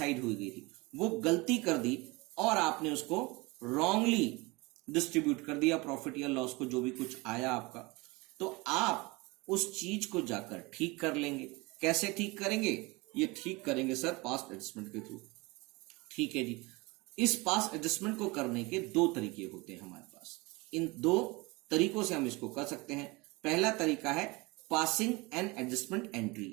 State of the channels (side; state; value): left; quieter; 24.6 dB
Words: हुई गई थी, वो गलती कर दी और आपने उसको रॉन्गली डिस्ट्रीब्यूट कर दिया प्रॉफिट या लॉस को, जो भी कुछ आया आपका, तो आप उस चीज को जाकर ठीक कर लेंगे। कैसे ठीक करेंगे? ये ठीक करेंगे सर पास्ट एडजस्टमेंट के थ्रू। ठीक है जी। इस पास्ट एडजस्टमेंट को करने के 2 तरीके होते हैं हमारे पास। इन 2 तरीकों से हम इसको कर सकते हैं। पहला तरीका है पासिंग एन एडजस्टमेंट एंट्री,